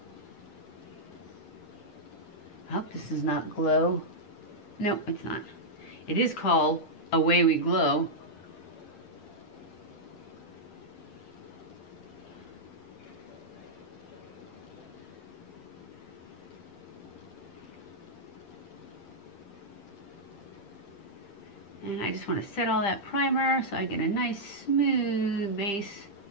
I hope this does not glow. Nope, it's not. It is called Away We Glow. And I just want to set all that primer so I get a nice smooth base,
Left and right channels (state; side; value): late; right; 10 ms